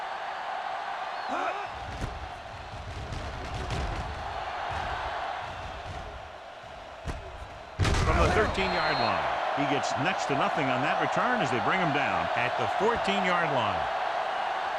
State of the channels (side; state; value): both; identical; correlation 1.00